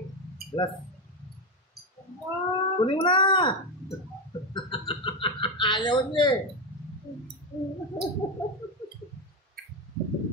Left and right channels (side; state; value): both; normal; correlation 0.11